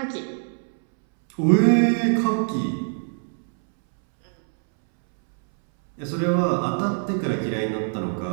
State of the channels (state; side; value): silent; left; 63 dB below the other